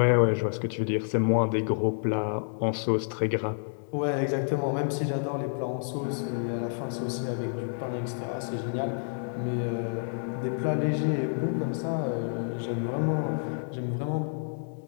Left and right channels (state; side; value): silent; right; digital silence